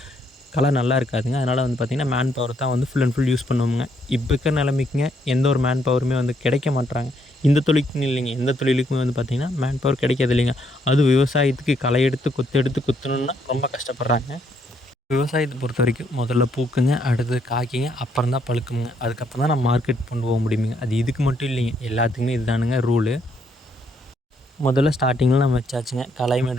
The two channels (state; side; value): normal; both; correlation 0.72